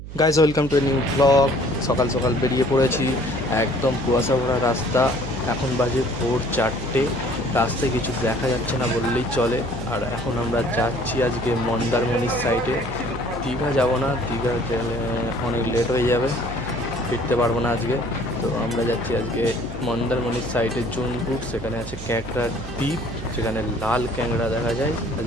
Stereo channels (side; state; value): right; noise; hum, 11 dB below the sound